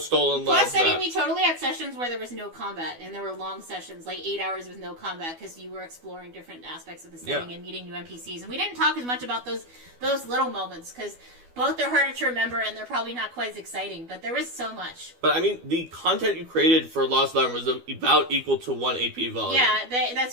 Lands Plus, map. we totally had sessions where there was no combat, and there were long sessions, like 8 hours with no combat, because you were exploring different aspects of the setting and meeting new NPCs. And we didn't talk as much about those little moments, because both are harder to remember, and they're probably not quite as exciting, but there was so much. But, I mean, the content you created for Lost Larn was about equal to 1 AP volume. Yeah,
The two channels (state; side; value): late; left; 12 ms